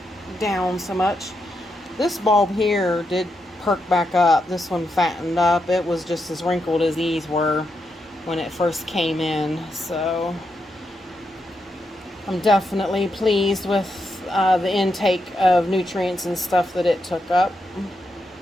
down so much, this bulb here did perk back up. This one fattened up. It was just as wrinkled as these were when it first came in. So I'm definitely pleased with the intake of nutrients and stuff that it took up.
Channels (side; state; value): both; normal; correlation 0.84